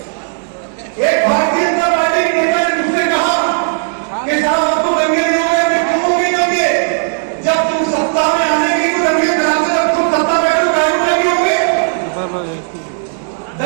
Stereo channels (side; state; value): left; silent; digital silence